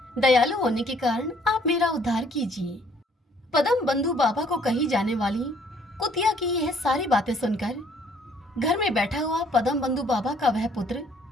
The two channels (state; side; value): normal; both; correlation 0.62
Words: दयालु होने के कारण आप मेरा उद्धार कीजिए। पदम बंधु बाबा को कही जाने वाली कुतिया की यह सारी बातें सुनकर घर में बैठा हुआ पदम बंधु बाबा का वह पुत्र